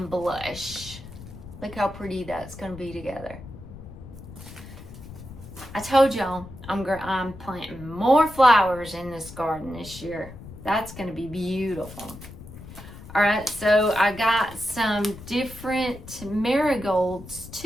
blush. Look how pretty that's going to be together. I told y'all I'm planting more flowers in this garden this year. That's going to be beautiful. All right, so I got some different marigolds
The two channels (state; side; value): noise; left; rumble, 15 dB below the sound